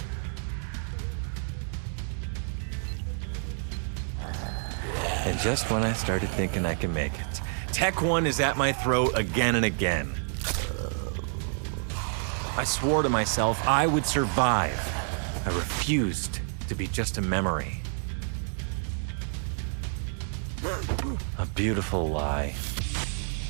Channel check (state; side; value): silent; left; 58 dB below the other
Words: And just when I started thinking I can make it, Tech 1 is at my throat again and again. I swore to myself I would survive. I refused to be just a memory. A beautiful lie.